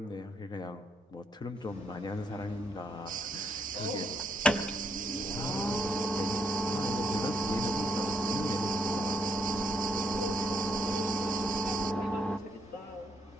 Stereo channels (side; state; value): both; normal; correlation 0.74